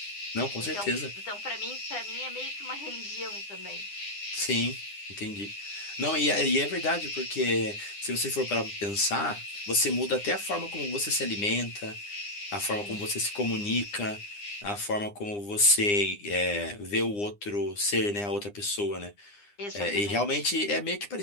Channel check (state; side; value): late; right; 9.8 ms